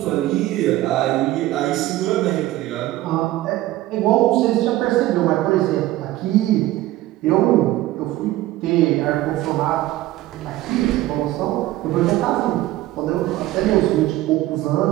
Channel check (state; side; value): quieter; left; 16.0 dB